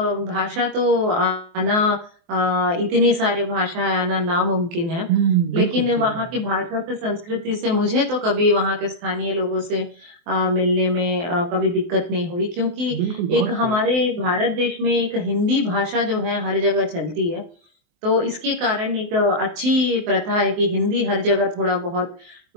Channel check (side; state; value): left; late; 23 ms